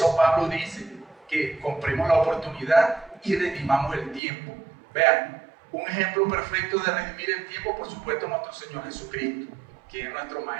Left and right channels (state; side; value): drops out; left; at 4.2 s